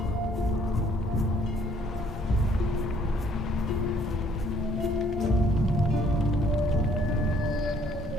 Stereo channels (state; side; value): normal; both; correlation 0.63